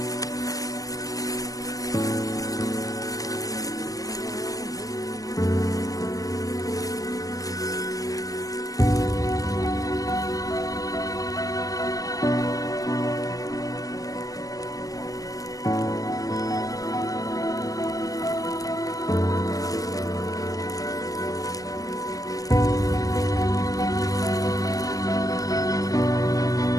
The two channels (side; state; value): right; late; 0.17 ms